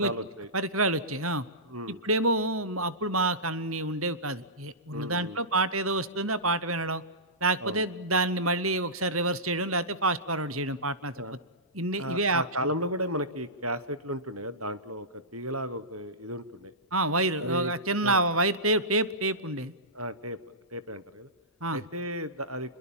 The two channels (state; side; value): normal; both; correlation -0.19